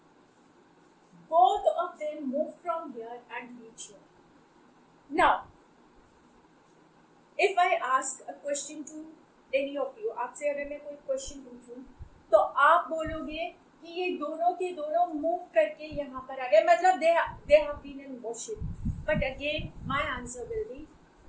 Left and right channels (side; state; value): both; identical; correlation 1.00